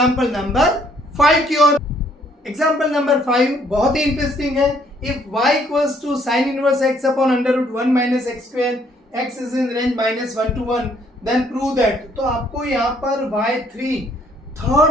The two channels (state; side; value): normal; both; correlation 0.65